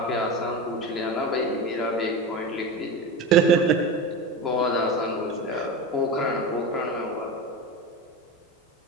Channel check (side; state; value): both; normal; correlation 0.24